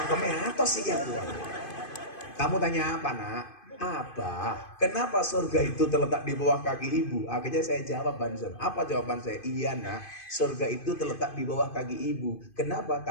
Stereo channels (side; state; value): right; late; 2.5 ms